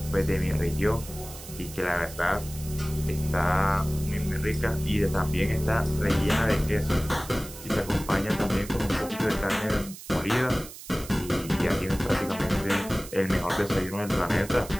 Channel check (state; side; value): noise; right; hiss, 15 dB below the sound